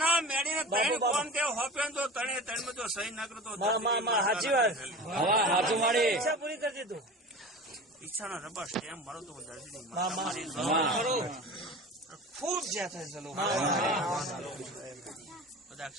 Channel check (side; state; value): both; normal; correlation 0.34